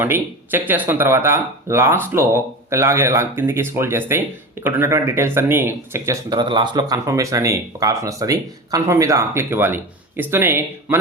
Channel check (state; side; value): normal; both; correlation 0.28